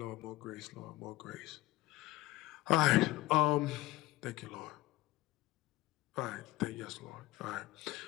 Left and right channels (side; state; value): right; quieter; 18.3 dB